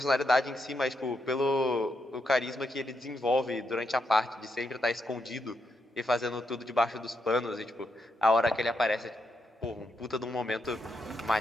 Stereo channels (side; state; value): both; normal; correlation 0.81